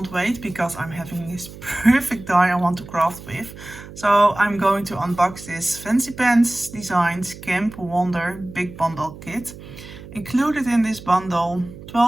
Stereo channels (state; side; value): noise; right; hum, 15 dB below the sound